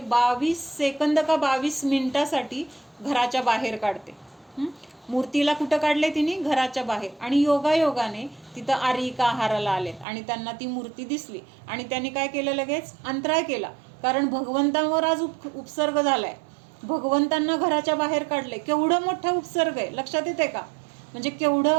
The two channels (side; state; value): left; drops out; at 10.1 s